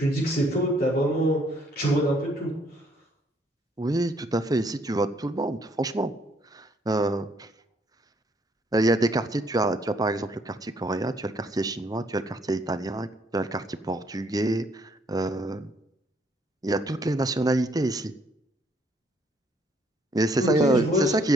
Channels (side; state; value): both; normal; correlation 0.66